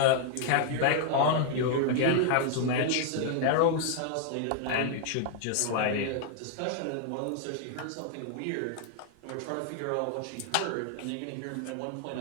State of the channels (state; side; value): different; both; correlation 0.00